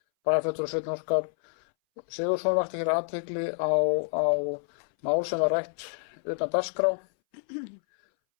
Bæjarfulltrúi Sveinn Óskar Sigurðsson vakti hér athygli á mál sem var rætt utan dagskrá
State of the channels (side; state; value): right; silent; 59 dB below the other